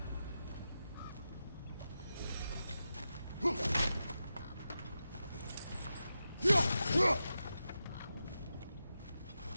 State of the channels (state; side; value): inverted; both; correlation -0.90